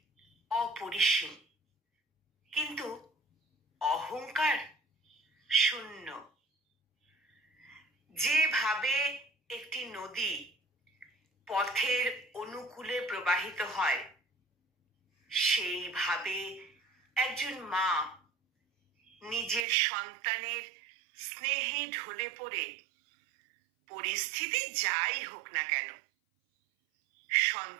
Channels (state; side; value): drops out; left; at 19.7 s